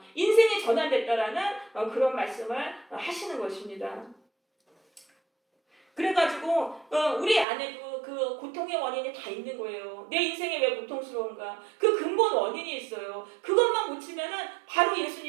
인생이 전환됐다라는 그런 말씀을 하시는 것입니다. 그래가지고 우리 안에도 그 고통의 원인이 다 있는 거예요. 내 인생이 왜 고통스러운가? 그 근본 원인이 있어요. 그것만 고치면은 바로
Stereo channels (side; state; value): left; drops out; at 7.5 s